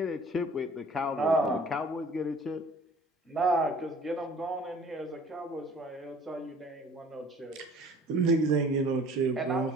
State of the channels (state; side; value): normal; both; correlation 0.51